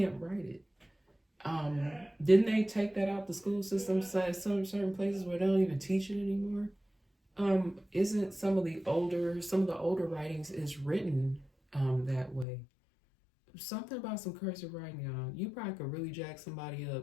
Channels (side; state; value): right; drops out; at 12.5 s